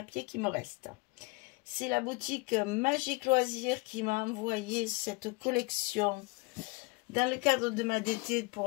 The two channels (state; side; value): quieter; right; 25.7 dB